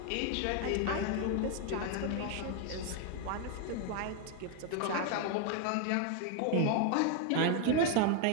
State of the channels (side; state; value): both; different; correlation 0.01